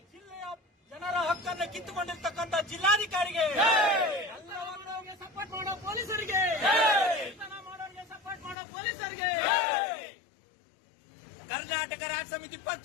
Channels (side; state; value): right; drops out; at 8.6 s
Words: ಜಿಲ್ಲೆಯ ಜನರ ಹಕ್ಕನ್ನು ಕಿತ್ತುಕೊಂಡಿರ್ತಕ್ಕಂಥ ಜಿಲ್ಲಾಧಿಕಾರಿಗೆ, ಎಲ್ಲವನ್ನವರಿಗೆ ಸಪೋರ್ಟ್ ಮಾಡೋ ಪೊಲೀಸರಿಗೆ, ಮಾಡೋರಿಗೆ ಸಪೋರ್ಟ್ ಮಾಡೋ ಪೊಲೀಸರಿಗೆ, ಕರ್ನಾಟಕ ರಾಜ್ಯ ಸಮಿತಿ